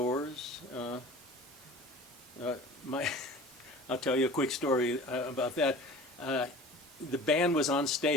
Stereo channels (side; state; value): both; normal; correlation 0.41